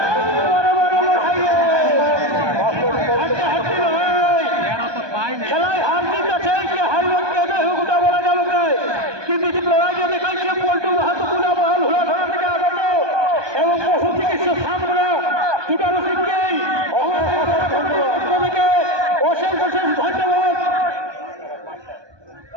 বড় বড় লড়াই রে। হাড্ডাহাড্ডি লড়াই। খেলায় হার জিত আছে কি হারবে কেটে হুকুটা বলা যাবে না, কিন্তু যে লড়াইটা দেখাচ্ছে পল্টু মাহাতো পুনা মহল হুড়াধরা থেকে আগত এবং পশু চিকিৎসা সামনে দুটারও সিংকেই থেকে অশেষ অশেষ ধন্যবাদ।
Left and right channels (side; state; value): left; late; 1.2 ms